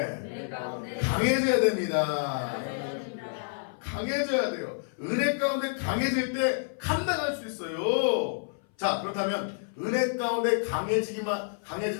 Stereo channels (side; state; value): right; silent; 56 dB below the other